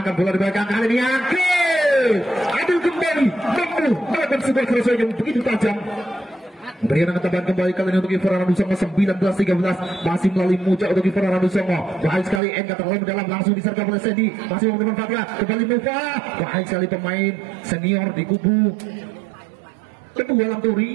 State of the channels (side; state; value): left; drops out; at 12.4 s